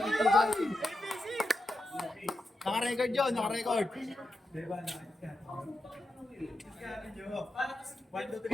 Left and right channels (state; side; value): normal; both; correlation 0.88